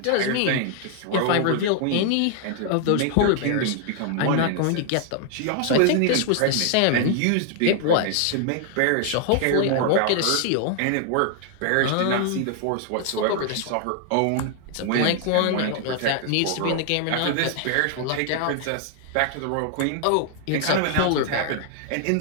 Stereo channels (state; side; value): different; both; correlation 0.00